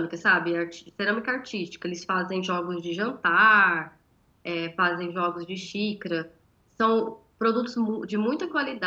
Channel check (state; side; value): identical; both; correlation 1.00